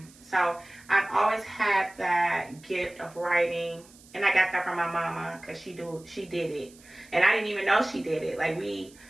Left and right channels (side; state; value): right; noise; hiss, 24 dB below the sound